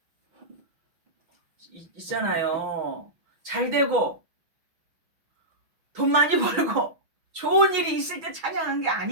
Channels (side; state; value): left; late; 6.0 ms